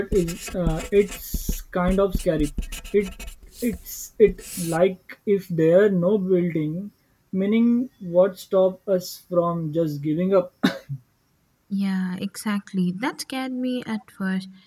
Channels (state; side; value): identical; both; correlation 1.00